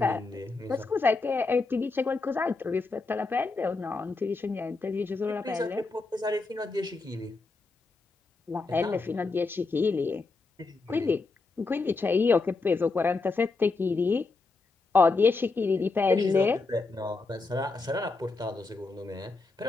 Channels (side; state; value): right; quieter; 3.8 dB